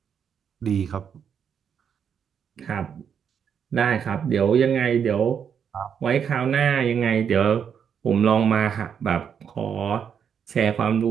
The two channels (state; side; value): quieter; left; 7.6 dB